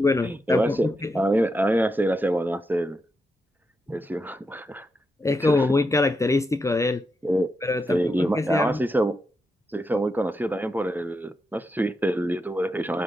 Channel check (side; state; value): both; normal; correlation 0.84